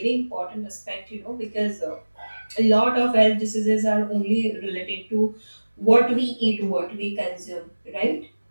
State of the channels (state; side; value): inverted; both; correlation -1.00